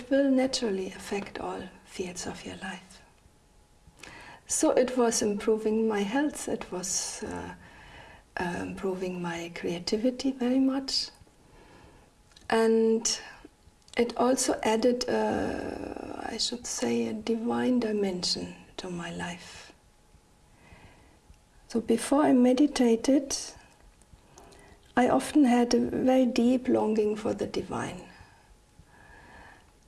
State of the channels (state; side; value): identical; both; correlation 1.00